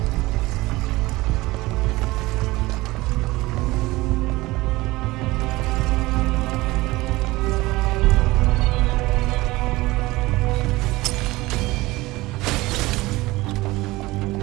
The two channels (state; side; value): quieter; left; 20.1 dB